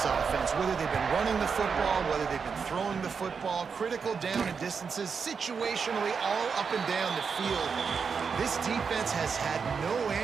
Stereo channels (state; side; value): quieter; left; 5.8 dB